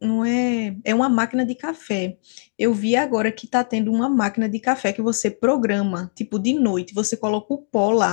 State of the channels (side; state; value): right; silent; digital silence